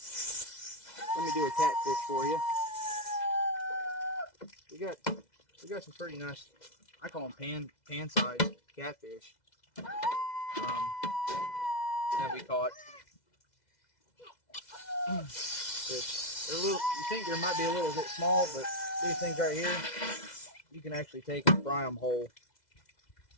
me do a catfish for you. We got some pretty nice, I call them pan-sized catfish that we caught. They're a little, you think they might be a little bit small, but these things right here, you can actually take and fry them whole.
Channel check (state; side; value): late; right; 2.0 ms